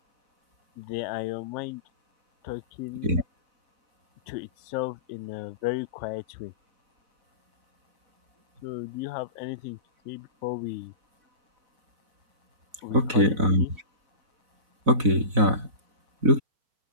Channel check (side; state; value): left; late; 4.0 ms